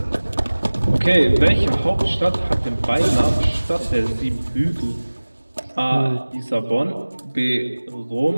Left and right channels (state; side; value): inverted; both; correlation -1.00